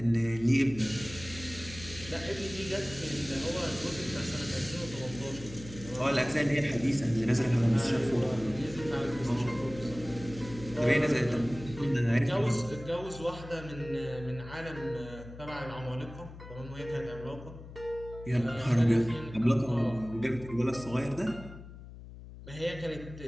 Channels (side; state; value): left; noise; hum, 15 dB below the sound